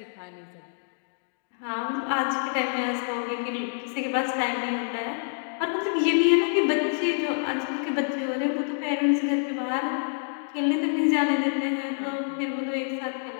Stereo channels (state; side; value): silent; right; digital silence